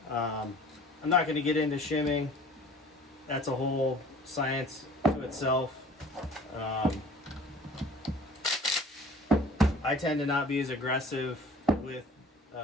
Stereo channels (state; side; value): normal; both; correlation 0.48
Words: I'm not going to get into shimming. That's a whole science to itself. I tend to not be as aggressive with